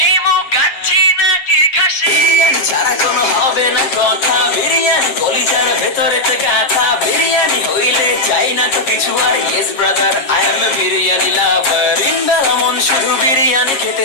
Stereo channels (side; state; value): right; late; 7.3 ms